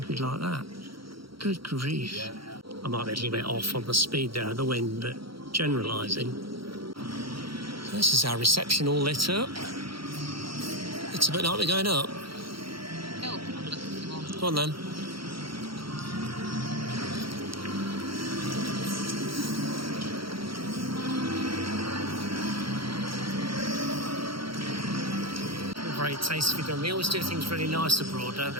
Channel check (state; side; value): late; left; 0.74 ms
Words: like that? Good grief. Yeah. I might be a little bit off on the speed there of the wind, but generalising. This is our reception all lit up. It's a bit like we're going up. Go on then. Very tastefully done. They always do things really nice abroad, don't they?